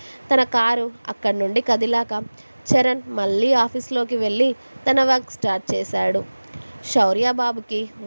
తన కారు అక్కడి నుండి కదిలాక చరణ్ మళ్ళీ ఆఫీస్లోకి వెళ్ళి తన వర్క్ స్టార్ట్ చేశాడు. శౌర్య బాబుకి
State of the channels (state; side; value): inverted; both; correlation -1.00